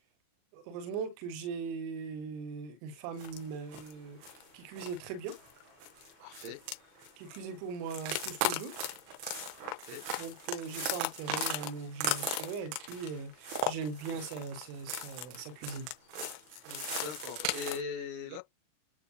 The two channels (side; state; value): left; late; 40 ms